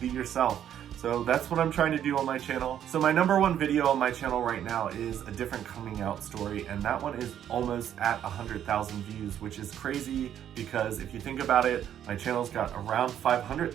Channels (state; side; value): quieter; left; 10.2 dB